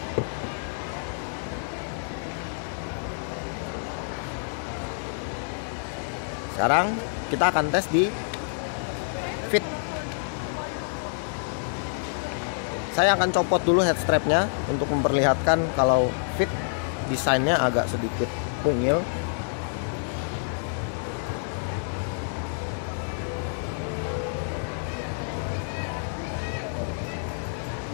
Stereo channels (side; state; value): right; silent; digital silence